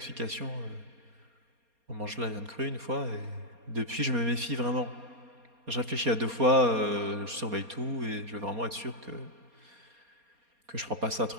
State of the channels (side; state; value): left; late; 4.2 ms